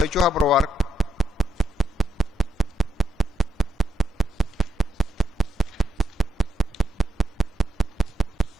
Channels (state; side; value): normal; both; correlation 0.82